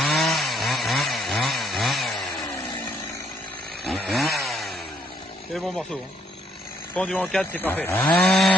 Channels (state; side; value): normal; both; correlation 0.68